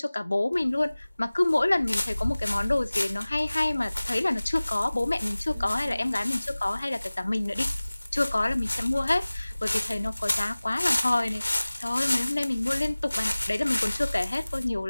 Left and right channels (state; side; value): inverted; both; correlation -0.99